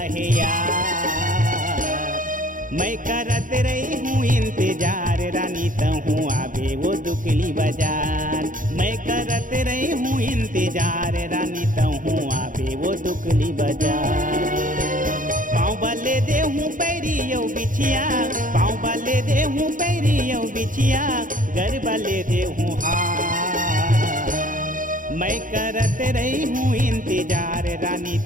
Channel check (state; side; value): late; left; 0.39 ms